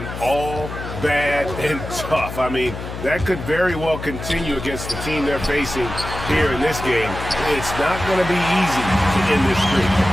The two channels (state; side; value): noise; left; hum, 8 dB below the sound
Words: all bad and tough. I mean, that could very well continue against the team they're facing here in this game. It's not going to be easy to end this streak.